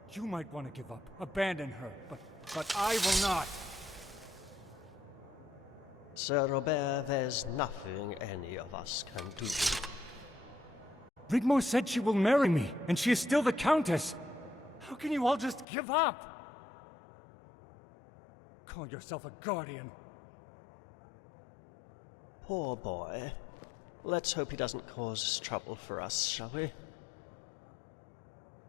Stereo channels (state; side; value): drops out; right; at 15.7 s